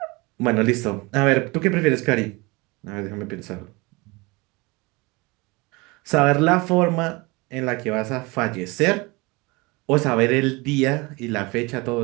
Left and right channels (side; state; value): left; quieter; 25.2 dB